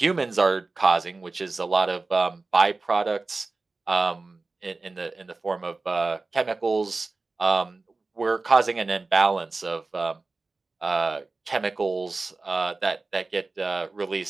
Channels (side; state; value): left; quieter; 3.6 dB